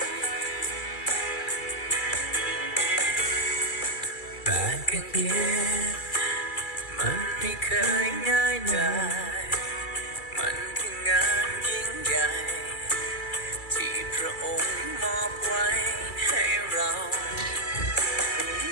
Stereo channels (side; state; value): right; late; 2.3 ms